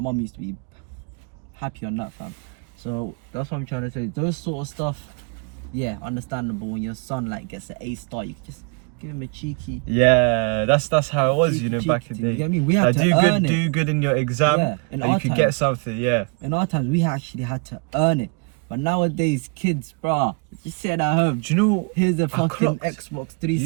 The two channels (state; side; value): quieter; left; 34.5 dB